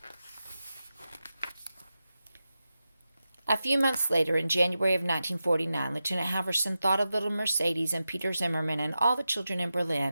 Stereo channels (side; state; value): both; inverted; correlation -0.92